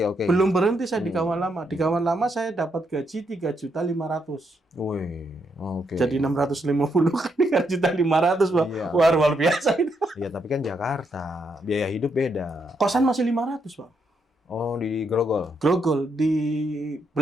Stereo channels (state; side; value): normal; both; correlation 0.78